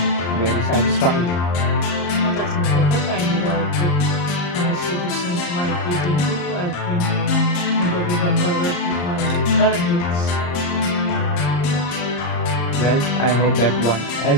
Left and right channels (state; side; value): late; right; 34 ms